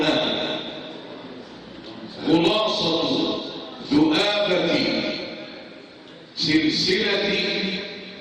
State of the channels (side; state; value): both; identical; correlation 1.00